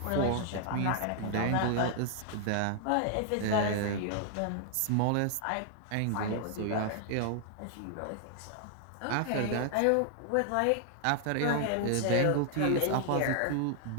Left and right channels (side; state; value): both; different; correlation -0.01